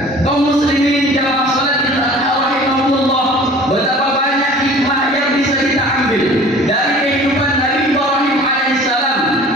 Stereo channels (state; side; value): normal; both; correlation 0.45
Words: Kaum muslimin jamaah salatul adha rahimahullah, betapa banyak hikmah yang bisa kita ambil dari kehidupan Nabi Ibrahim alaihissalam